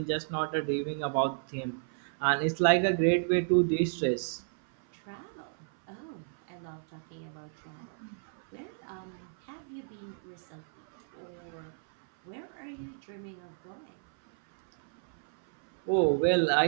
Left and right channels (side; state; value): left; silent; 56 dB below the other